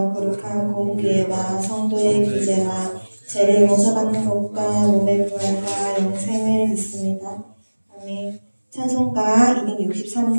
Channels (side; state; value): both; inverted; correlation -1.00